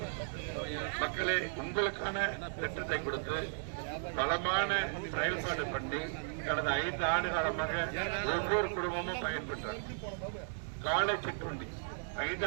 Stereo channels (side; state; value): left; silent; digital silence